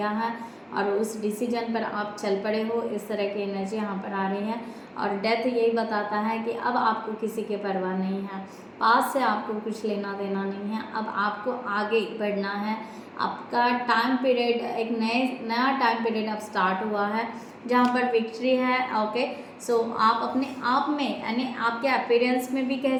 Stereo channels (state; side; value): identical; both; correlation 1.00